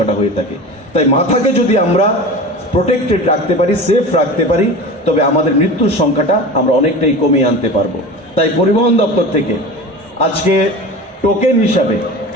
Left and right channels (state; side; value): normal; both; correlation 0.33